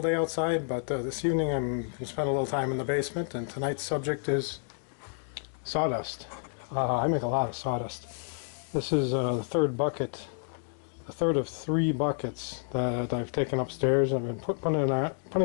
day outside, but this evening I'm going to spend a little time in the basement, and tonight's subject is sawdust. I make a lot of sawdust. This is the third bucket, the third of 3 buckets that I've taken upstairs. I've been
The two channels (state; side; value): silent; right; digital silence